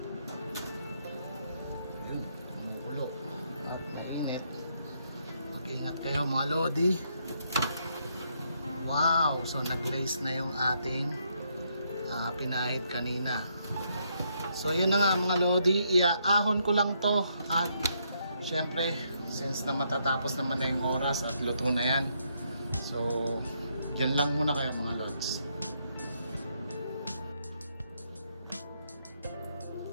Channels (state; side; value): inverted; both; correlation -0.75